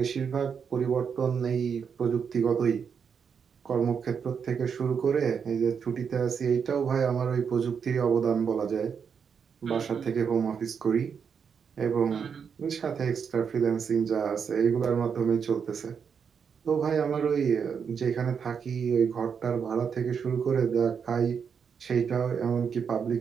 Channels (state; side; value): quieter; left; 6.7 dB